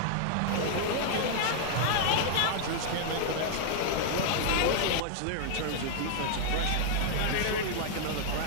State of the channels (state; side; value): different; both; correlation -0.01